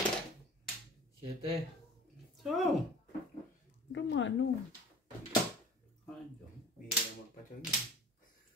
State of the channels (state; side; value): normal; both; correlation 0.43